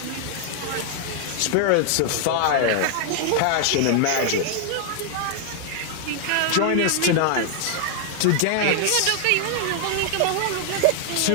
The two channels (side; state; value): both; different; correlation 0.00